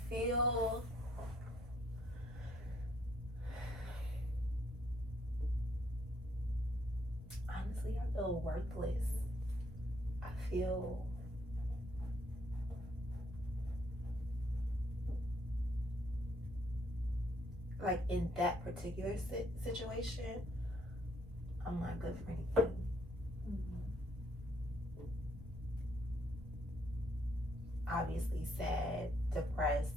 feel honestly, I feel worthless. I feel like in that particular situation, I'm not good for anything. Mm-hmm. Obviously sad,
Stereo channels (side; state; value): both; normal; correlation 0.69